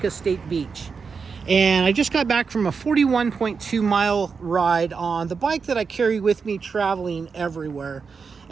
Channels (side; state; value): left; quieter; 5.4 dB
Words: State Beach. And I just got back from a 41.2 mile ride on the bike that I carry with me traveling everywhere.